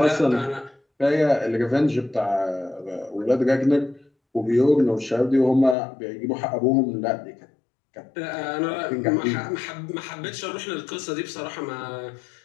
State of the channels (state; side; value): drops out; right; at 5.8 s